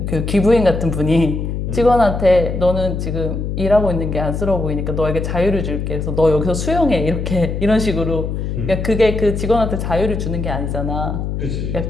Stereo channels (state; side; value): noise; left; hum, 3 dB below the sound